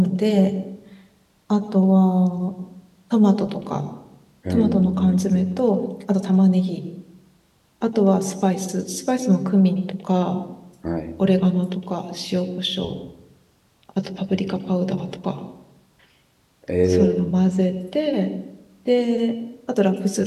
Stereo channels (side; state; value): both; identical; correlation 1.00